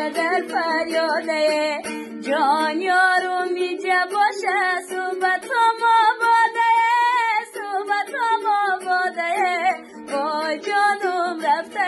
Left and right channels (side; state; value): both; identical; correlation 1.00